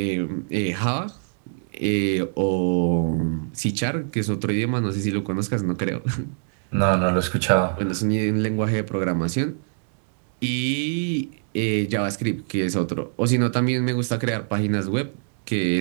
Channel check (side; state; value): left; silent; digital silence